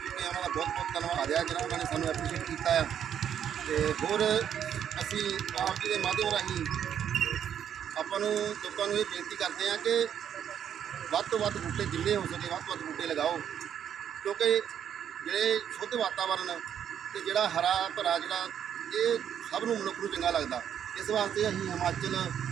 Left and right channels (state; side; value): quieter; left; 9.1 dB